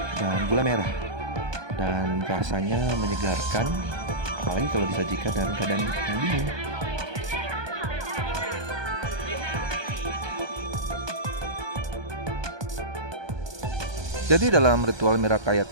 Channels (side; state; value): left; late; 1.2 ms